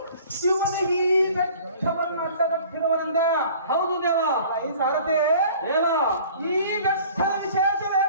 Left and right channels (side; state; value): both; inverted; correlation -0.49